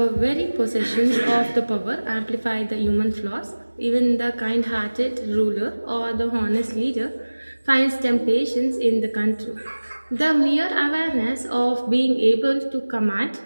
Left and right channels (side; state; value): both; inverted; correlation -1.00